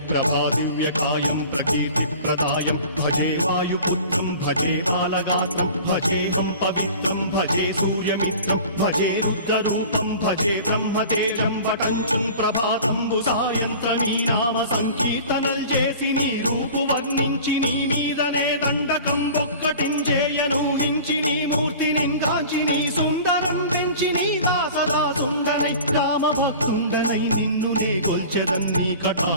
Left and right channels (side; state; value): both; inverted; correlation -0.41